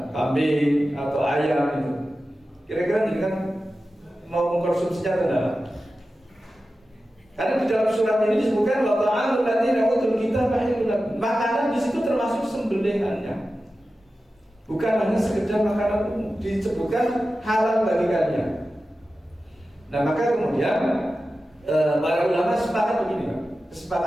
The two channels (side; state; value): both; normal; correlation 0.93